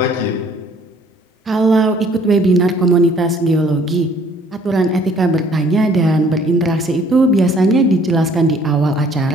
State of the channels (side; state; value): both; normal; correlation 0.59